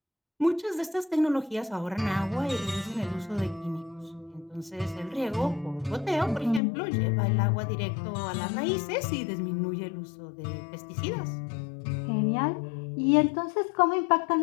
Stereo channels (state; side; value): drops out; right; at 6.6 s